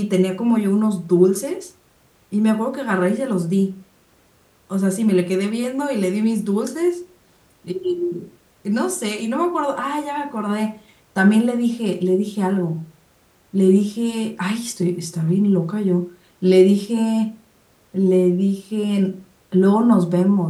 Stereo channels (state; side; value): identical; both; correlation 1.00